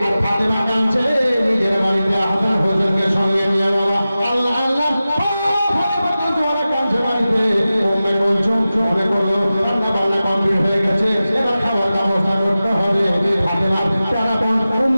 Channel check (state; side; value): inverted; both; correlation -0.95